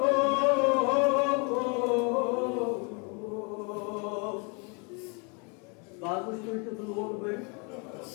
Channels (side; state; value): right; quieter; 34.0 dB